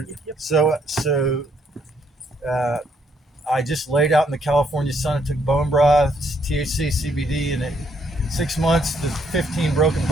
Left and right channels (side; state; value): both; normal; correlation 0.71